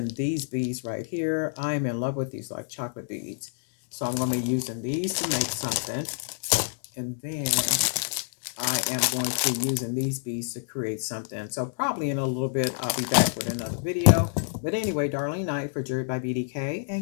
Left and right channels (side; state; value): right; silent; digital silence